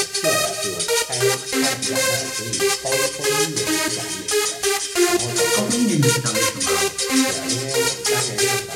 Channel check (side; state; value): both; identical; correlation 1.00